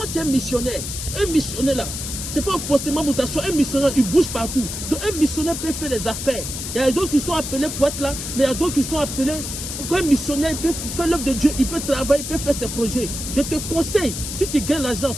tu es missionnaire. Un missionnaire là, ce n'est pas forcément mutation. Un missionnaire, il bouge partout. Donc, un missionnaire peut faire des affaires. Il y a d'autres qui sont appelés pour être là, mais il y a d'autres qui sont appelés. Quand un missionnaire, il peut faire l'œuvre de Dieu, il peut travailler, il peut faire ses projets. Je te conseille, si tu gagnes l'argent,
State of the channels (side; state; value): left; noise; hiss, 6 dB below the sound